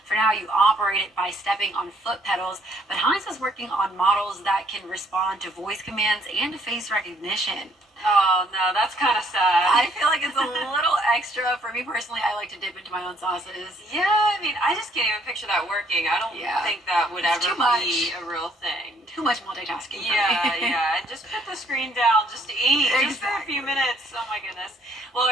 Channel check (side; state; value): both; normal; correlation 0.65